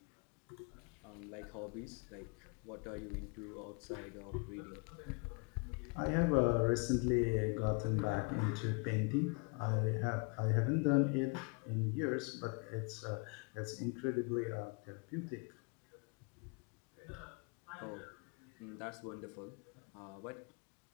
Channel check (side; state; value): right; quieter; 32.3 dB